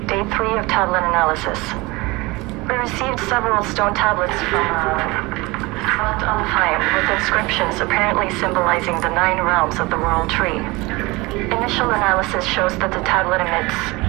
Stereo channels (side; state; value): left; quieter; 23.3 dB